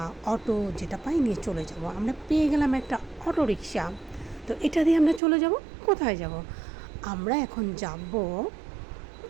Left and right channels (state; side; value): drops out; left; at 5.2 s